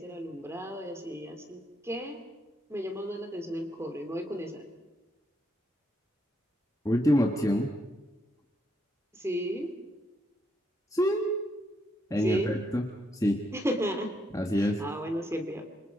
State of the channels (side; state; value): both; normal; correlation 0.77